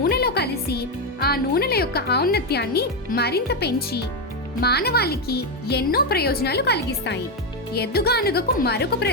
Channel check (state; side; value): normal; both; correlation 0.07